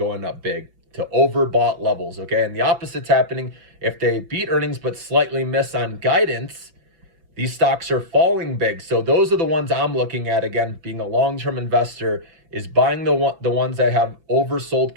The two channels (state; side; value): late; left; 5.9 ms